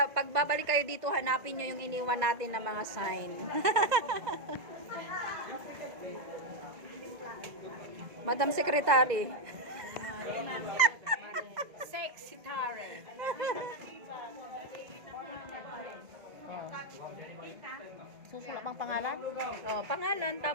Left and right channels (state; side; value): late; left; 2.0 ms